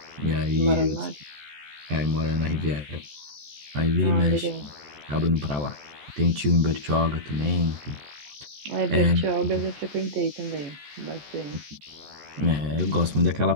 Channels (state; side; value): late; left; 14 ms